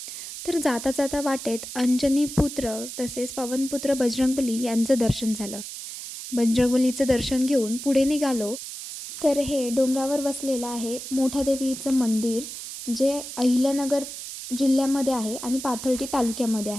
तर जाता जाता वाटेत अंजनीपुत्र तसेच पवनपुत्र बजरंगबली यांचं दर्शन झालं. बजरंगबलीचं दर्शन घेऊन पुढे निघालो तर हे डोंगरावर वसलेलं आहे मोठादेवीचं मंदिर, जे अहिल्यानगर जिल्ह्यामध्ये आहे आणि पाथर्डी तालुक्यामध्ये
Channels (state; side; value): noise; right; hiss, 9 dB below the sound